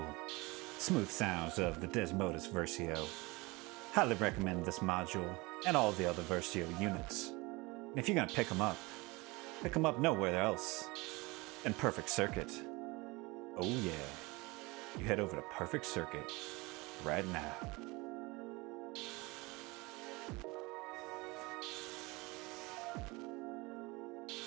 smooth sounds of the Desmodus Versio. Highly recommend this module and all the other Versio units. And if you're gonna pick them up nowhere else than Perfect Circuit. Oh yeah, you head over to Perfect Circuit right now.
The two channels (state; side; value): quieter; left; 24.0 dB